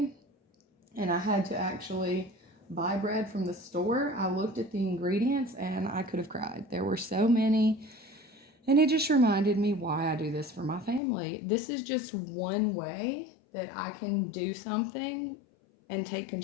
and I had to actually buy bread from the store, I looked at the ingredients and I could have cried. There were so many, and it just reminded me why I do this for my family. This is just one way that I can do something and take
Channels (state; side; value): drops out; right; at 11.0 s